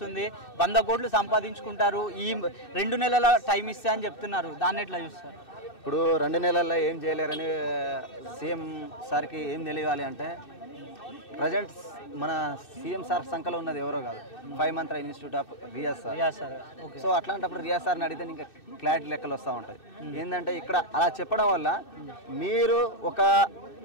100 కోట్లు సంపాదించుకుంటారు, ఈ 2 నెలల టైం ఇస్తే అని చెప్తున్నారు. దాన్ని ఎట్లా చూస్తారు? ఇప్పుడు 2 నెలల్లో ఏం చేయలేరని సీఎం సార్కి ఏం తెలియాలి అంటే, ప్రజెంట్ మన సీఎం సార్ సంఖ్యలో ఉన్నది ఎవరో కాదు, 5 month institute of Riyaz sir. So అట్లాంటప్పుడు రియాజ్ సార్ని అడిగితే ఇంకా క్లారిటీ లెక్కలు వస్తూ ఉంటాయి. ఏంటంటే ఇక్కడ అలా చెప్పడం వల్ల మీరు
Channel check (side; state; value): right; late; 2.6 ms